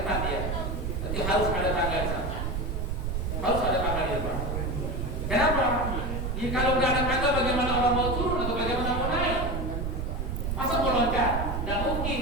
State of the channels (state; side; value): noise; right; rumble, 2 dB below the sound